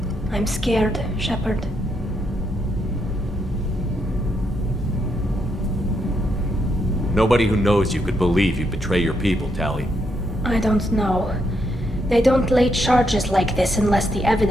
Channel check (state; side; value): normal; both; correlation 0.78